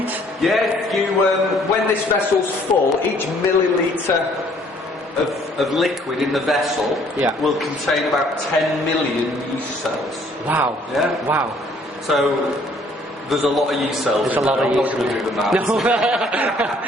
Yeah, when this vessel's full, each milliliter of liquid in the vessel will contain about 10 million yeast cells. Wow. Yeah. Wow. So there's a lot of yeast cells. There's a lot of yeast. I'm not going to do the maths.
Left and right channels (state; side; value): normal; both; correlation 0.61